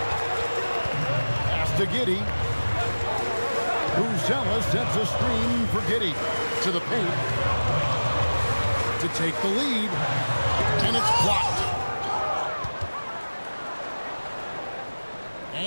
Pass to Giddey. Buzelis sets a screen for Giddey to the paint to take the lead, and it's blocked.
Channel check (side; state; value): both; inverted; correlation -1.00